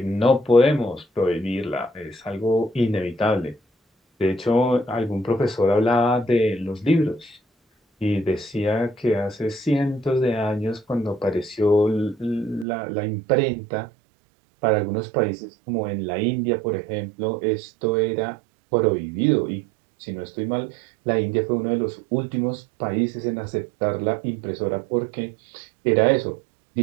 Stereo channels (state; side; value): drops out; left; at 12.7 s